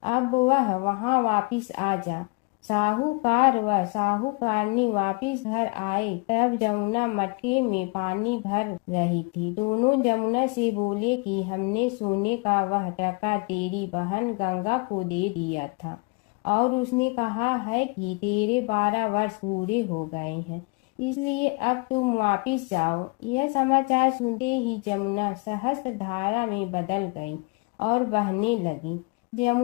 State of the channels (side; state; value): right; quieter; 29.7 dB